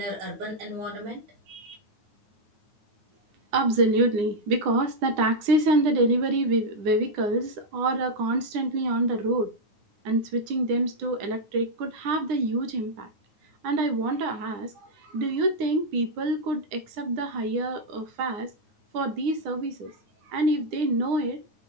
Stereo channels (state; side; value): late; left; 9.8 ms